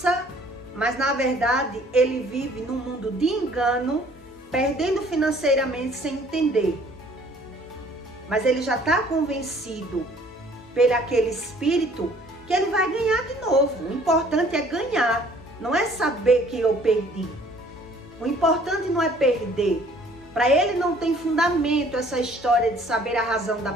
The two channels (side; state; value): both; normal; correlation 0.56